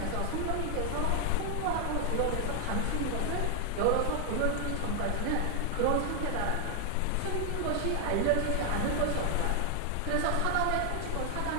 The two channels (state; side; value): different; both; correlation 0.00